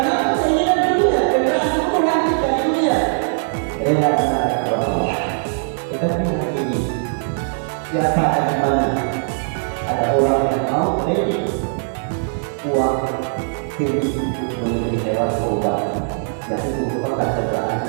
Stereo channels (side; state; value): left; silent; digital silence